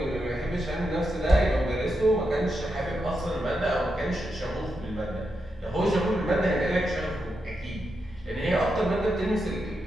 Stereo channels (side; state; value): both; normal; correlation 0.86